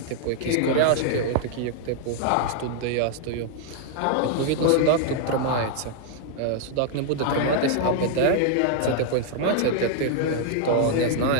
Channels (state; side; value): different; both; correlation 0.00